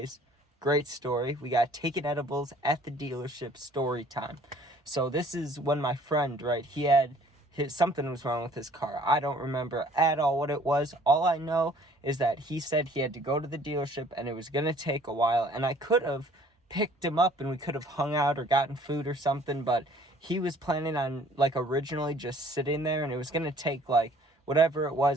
great story. We got taken edibles at the dealership story time. So this is when my friend, right, something was wrong with his car. I don't remember at all what it was. All I know is that he said he had to go to the dealership and it was going to take a while, and I could have picked him up and we could have hung out or gotten food or something, but he was planning on originally just sitting there, and it was going to take whatever it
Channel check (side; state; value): both; normal; correlation 0.55